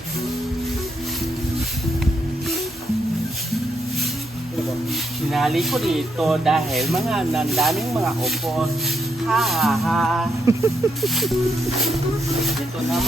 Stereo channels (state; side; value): normal; both; correlation 0.78